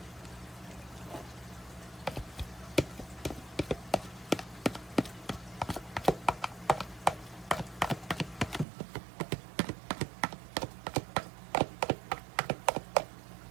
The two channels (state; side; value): drops out; left; at 8.7 s